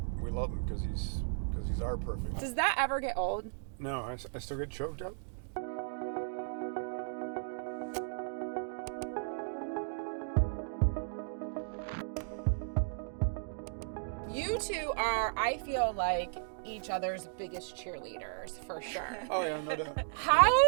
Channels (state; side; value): silent; left; digital silence